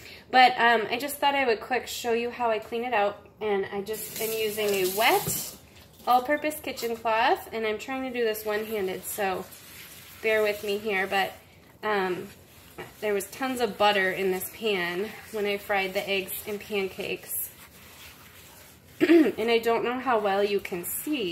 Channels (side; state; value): both; identical; correlation 1.00